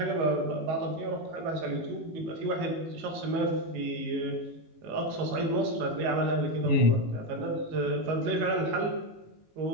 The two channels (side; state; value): left; late; 18 ms